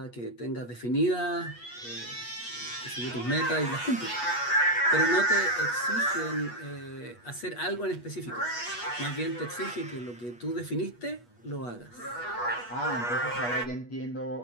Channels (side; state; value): right; late; 8.3 ms